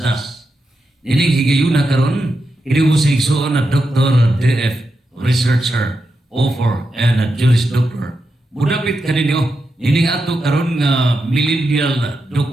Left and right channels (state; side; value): normal; both; correlation 0.87